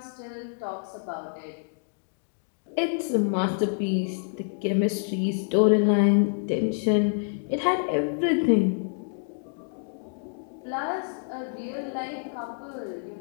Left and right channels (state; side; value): silent; right; digital silence